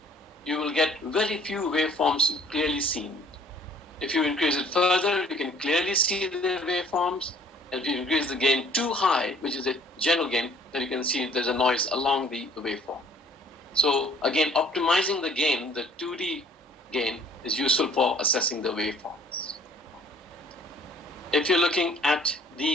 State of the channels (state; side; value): normal; both; correlation 0.56